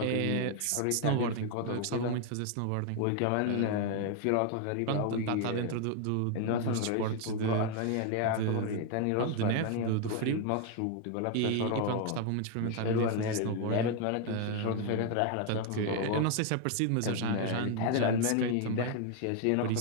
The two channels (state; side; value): different; both; correlation 0.01